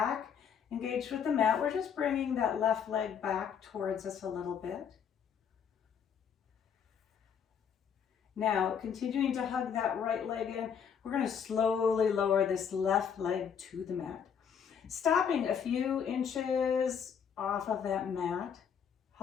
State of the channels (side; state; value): right; quieter; 7.5 dB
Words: engaged with the mat. We're just bringing that left leg back towards us a little bit. Now, continuing to hug that right leg in, we're going to slowly lower this left leg to the mat. Stopping a few inches off of that mat,